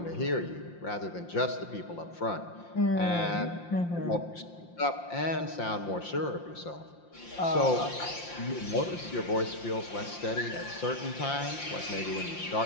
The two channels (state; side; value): late; right; 5.8 ms